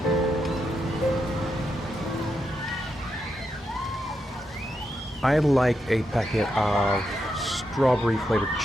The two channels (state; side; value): normal; both; correlation 0.84